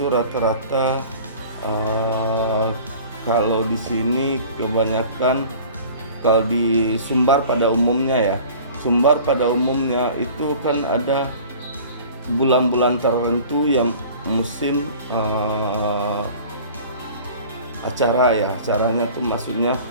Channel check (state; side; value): inverted; both; correlation -0.44